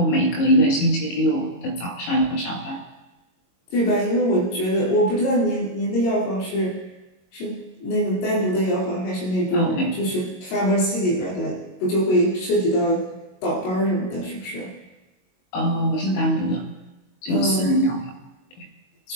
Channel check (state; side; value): late; right; 22 ms